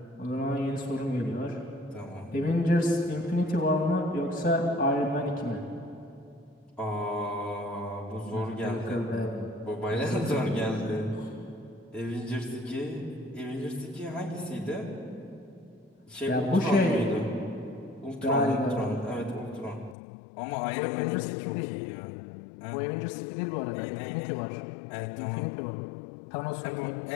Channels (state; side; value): drops out; right; at 20.0 s